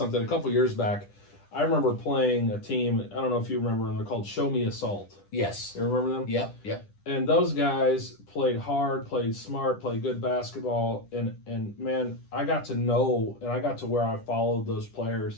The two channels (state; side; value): late; right; 10 ms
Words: A couple years back, I remember playing a team. I don't know if you remember them. They're called Show Me Assault. Yes. You remember them? Yep. And those guys played hard, played smart, played good basketball, and man, I got to know, and I got to where I followed those